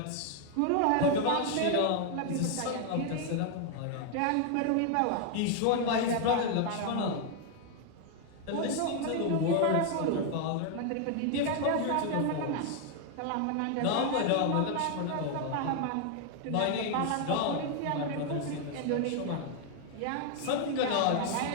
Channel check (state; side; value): different; both; correlation 0.00